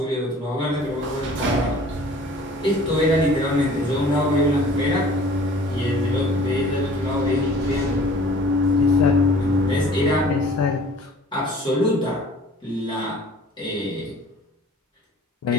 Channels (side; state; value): both; normal; correlation 0.49